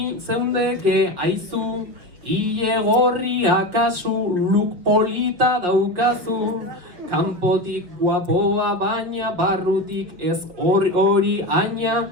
zeundeke aizu, ile gorria kasu, look polita daukazu. Kanpotik guapoa baina barrutik ez hori aina,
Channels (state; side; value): late; left; 5.5 ms